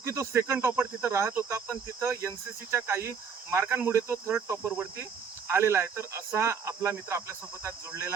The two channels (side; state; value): left; quieter; 6.4 dB